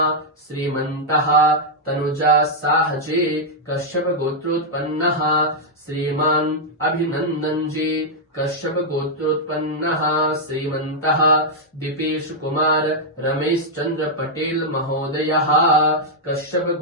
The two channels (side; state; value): both; normal; correlation -0.04